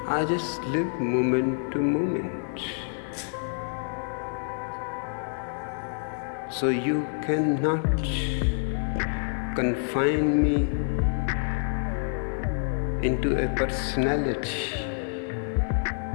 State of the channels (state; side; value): silent; right; 60 dB below the other